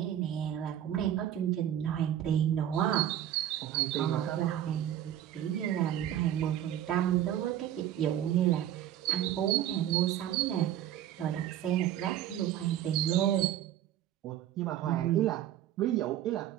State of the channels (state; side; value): quieter; left; 11.4 dB